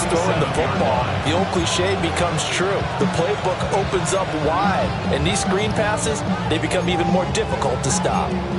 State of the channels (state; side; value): identical; both; correlation 1.00